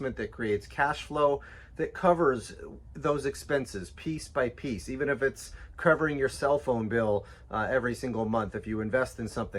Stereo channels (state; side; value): identical; both; correlation 1.00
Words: that creates cash flow, that covers those expenses piece by piece. Even if it's covering your cell phone bill every single month, if you invest in